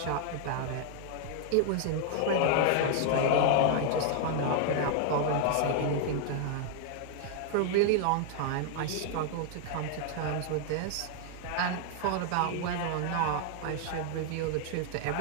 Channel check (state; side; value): different; both; correlation 0.00